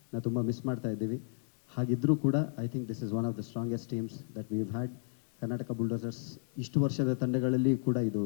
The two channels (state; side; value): silent; right; digital silence